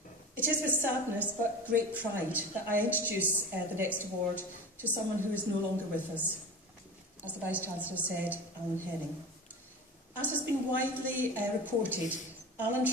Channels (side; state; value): both; normal; correlation 0.32